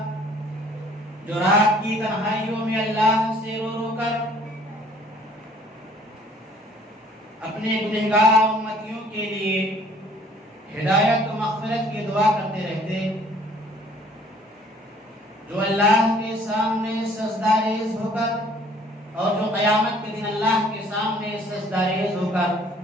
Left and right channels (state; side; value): normal; both; correlation 0.56